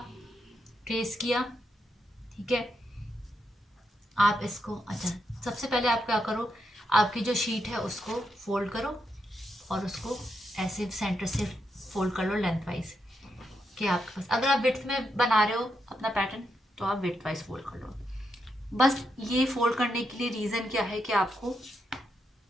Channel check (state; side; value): normal; both; correlation 0.83